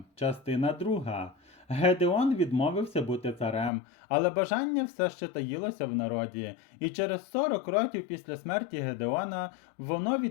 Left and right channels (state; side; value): drops out; right; at 3.7 s